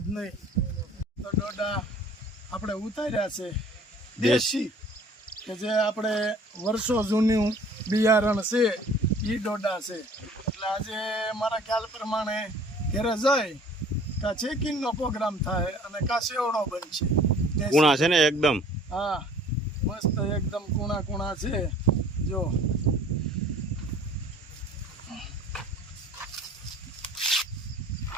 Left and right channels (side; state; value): both; normal; correlation 0.51